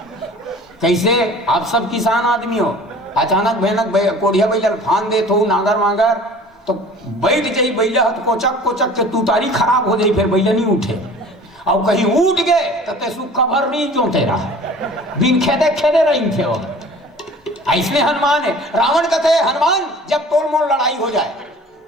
कैसे आप सब किसान आदमी हो अचानक भयानक कोड़िया बैल फान दे तो नागर मागर तो बैठ जाई बैला तो कोचक कोचक के तू तारी खराब हो जाई फिर बैला नहीं उठे। और कहीं उठ गए तो ते सुख भर नहीं जोते रहा बिन खेदे खेदे रही थे वो। ऐसने हनुमान है। रावण कहते हनुमान जब तोड़ मोड़ लड़ाई हो जाए।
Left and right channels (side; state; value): both; normal; correlation 0.45